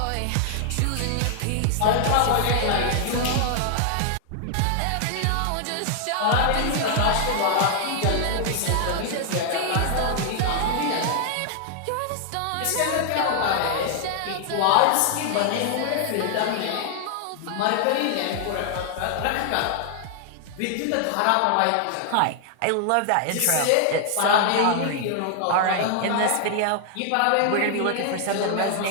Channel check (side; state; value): both; different; correlation 0.00